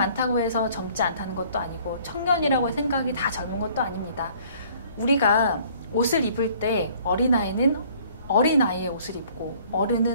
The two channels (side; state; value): both; inverted; correlation -0.56